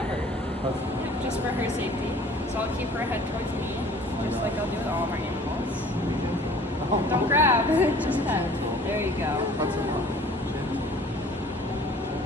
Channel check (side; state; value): both; normal; correlation 0.50